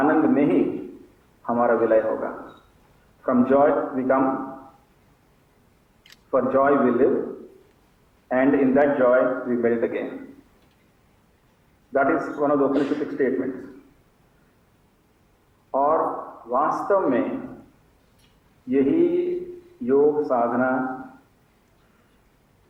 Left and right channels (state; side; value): identical; both; correlation 1.00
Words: में ही हमारा विलय होगा। From joy we come, for joy we live, and in that joy we melt again. That is one of the Upanishadic statements. और वास्तव में यही योग साधना